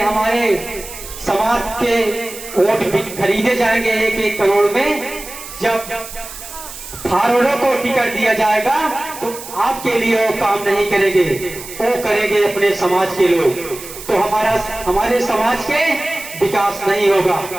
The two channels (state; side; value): noise; right; hiss, 13 dB below the sound